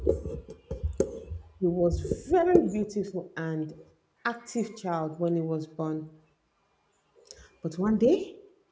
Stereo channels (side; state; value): both; identical; correlation 1.00